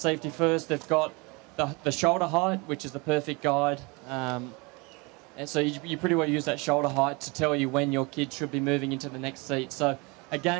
First, they've got the shoulder height, which is the perfect guide. And so you pretty well use that shoulder height to tell you when your kid should be moving into the next seat. So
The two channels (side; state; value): left; quieter; 27.8 dB